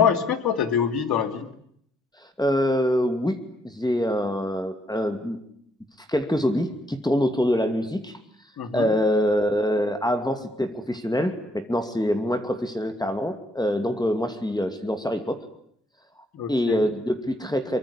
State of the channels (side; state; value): both; normal; correlation 0.71